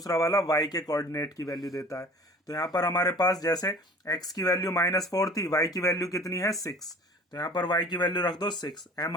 वाला y के कोऑर्डिनेट की वैल्यू देता है। तो यहाँ पर हमारे पास जैसे x की वैल्यू -4 थी, y की वैल्यू कितनी है 6, तो यहाँ पर y की वैल्यू रख दो 6, m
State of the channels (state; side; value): normal; both; correlation 0.46